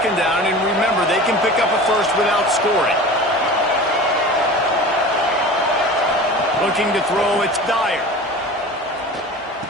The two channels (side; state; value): both; normal; correlation 0.36